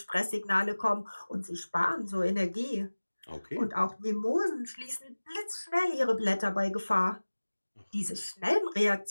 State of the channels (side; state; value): both; inverted; correlation -1.00